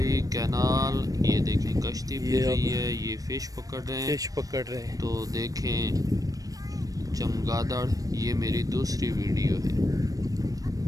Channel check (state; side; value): late; left; 0.17 ms